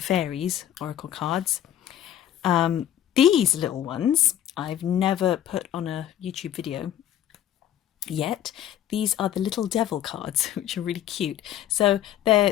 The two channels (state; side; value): quieter; right; 11.1 dB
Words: fairies oracle cards. These little ones I've never put on a YouTube video yet. These are the little devil cards, which are really cute. So they're